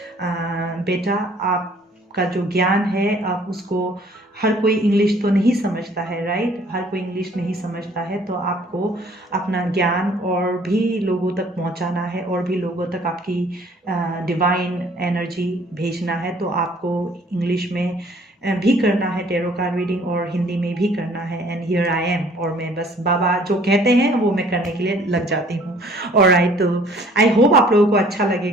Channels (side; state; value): both; normal; correlation 0.56